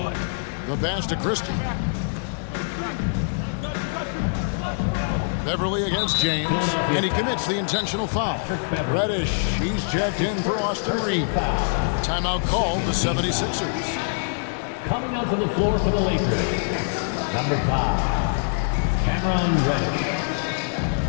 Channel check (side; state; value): right; silent; digital silence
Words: The pass to Christie. Beverly against James, and he commits the intentional foul. Reddish, he's checked in for Austin Reeves. Timeout called the 76ers. Coming onto the floor for the Lakers, number 5, Cameron Reddish.